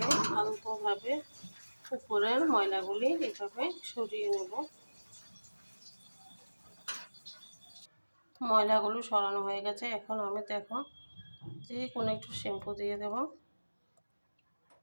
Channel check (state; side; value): inverted; both; correlation -1.00